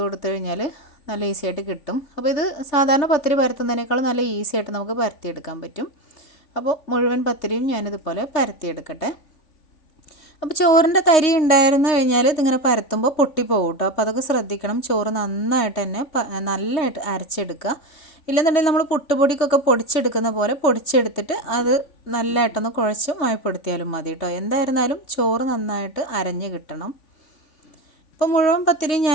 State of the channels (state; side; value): late; right; 3.2 ms